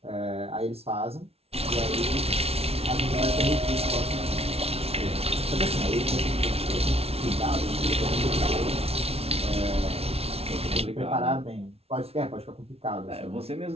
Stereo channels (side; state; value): left; late; 0.30 ms